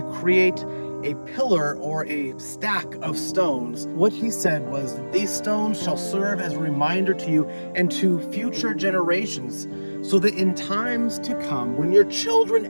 create a pillar or a stack of stones. What he said was that these stones shall serve as a reminder to you and to future generations, so that in times to come, when your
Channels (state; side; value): inverted; both; correlation -1.00